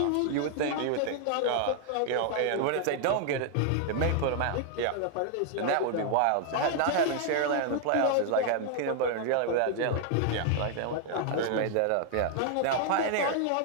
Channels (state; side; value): different; both; correlation 0.00